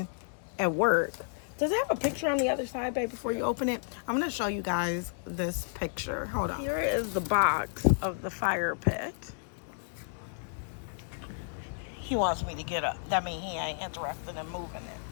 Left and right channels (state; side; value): silent; right; digital silence